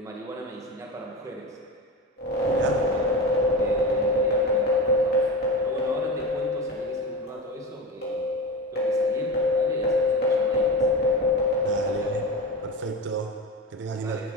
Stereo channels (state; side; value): normal; both; correlation 0.25